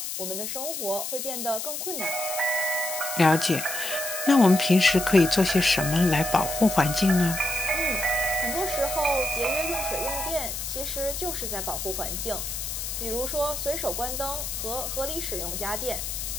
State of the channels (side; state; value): left; noise; hiss, 5 dB below the sound